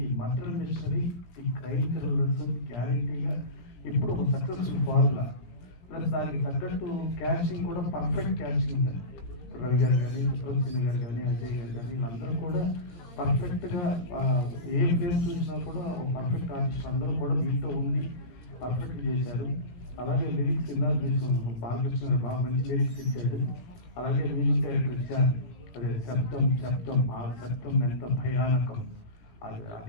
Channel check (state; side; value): late; right; 17 ms